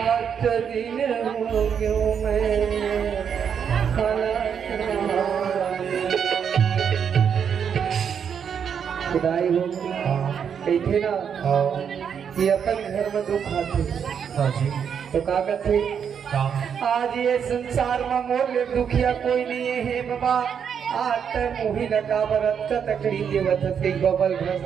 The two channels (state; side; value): quieter; left; 7.5 dB